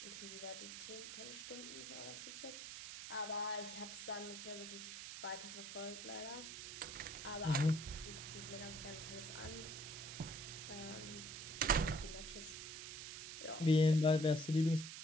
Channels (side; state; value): right; noise; hiss, 8 dB below the sound